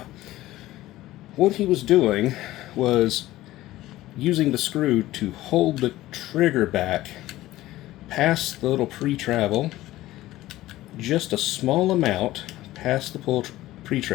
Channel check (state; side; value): quieter; right; 16.2 dB